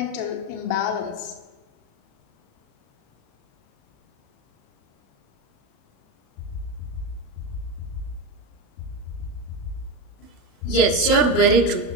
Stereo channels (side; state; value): right; late; 37 ms